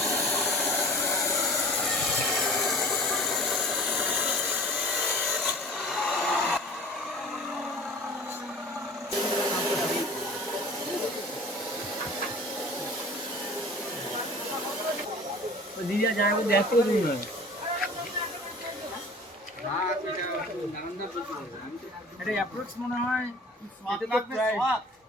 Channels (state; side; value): normal; both; correlation 0.43